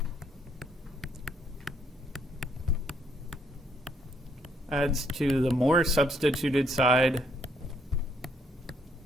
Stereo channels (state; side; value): normal; both; correlation 0.70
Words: adds to the more substituted side